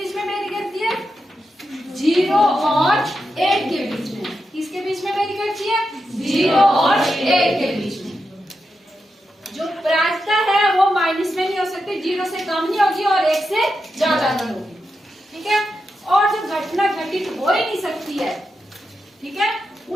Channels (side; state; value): both; normal; correlation 0.87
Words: में वेरी करती है? 0 और 1 के बीच में। किसके बीच में वेरी करती है? 0 और 1 के बीच में। जो प्रायिकता है वो माइनस में नहीं हो सकती, 0 से कम नहीं होगी और 1 से ज्यादा नहीं होगी। ठीक है, और जो घटना घटित हो ही नहीं सकती है, ठीक है,